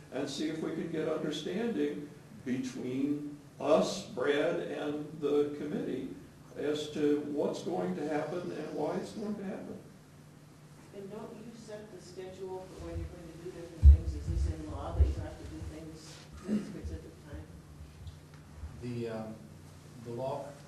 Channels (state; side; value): identical; both; correlation 1.00